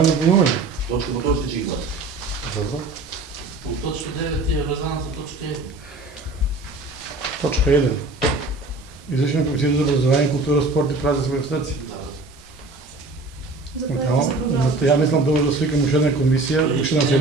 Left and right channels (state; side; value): quieter; left; 3.2 dB